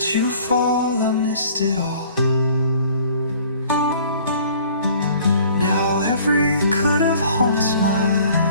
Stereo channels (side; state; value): both; inverted; correlation -0.53